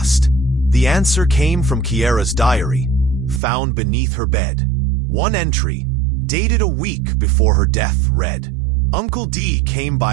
The answer came from Kiera's diary, found beneath her bed. One entry, dated a week before her death, read, "Uncle D came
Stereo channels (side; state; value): left; drops out; at 3.4 s